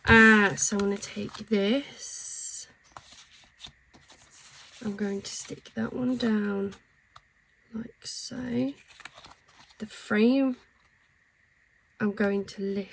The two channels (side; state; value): both; identical; correlation 1.00